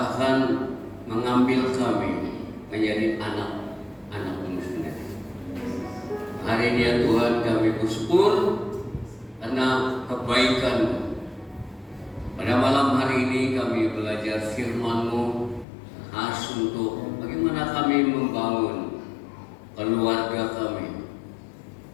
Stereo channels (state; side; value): drops out; right; at 15.7 s